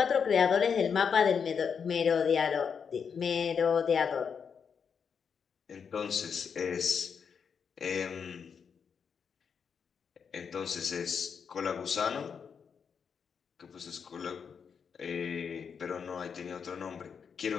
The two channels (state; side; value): quieter; right; 6.5 dB